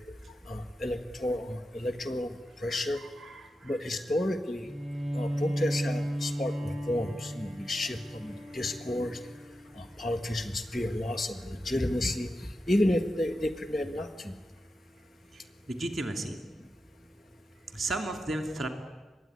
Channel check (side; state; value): both; normal; correlation 0.90